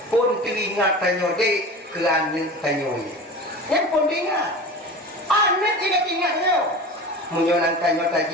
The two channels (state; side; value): normal; both; correlation 0.33